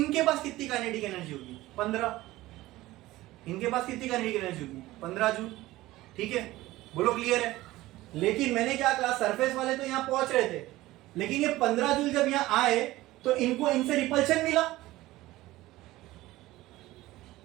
पास कितनी काइनेटिक एनर्जी होगी, 15। इनके पास कितनी काइनेटिक एनर्जी होगी, 15 जूल। ठीक है, बोलो क्लियर है? लेकिन मैंने क्या कहा, सरफेस वाले तो यहां पहुंच रहे थे, लेकिन ये 15 जूल जब यहां आए तो इनको इनसे रिपल्शन मिला,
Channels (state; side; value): quieter; left; 17.5 dB